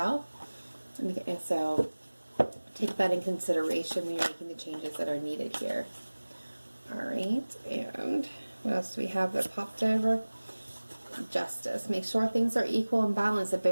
And so take that in consideration when you're making the changes that are needed here. All right, and what else do we have that popped over? Justice. Make sure things are equal and balanced, that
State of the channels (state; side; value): inverted; both; correlation -1.00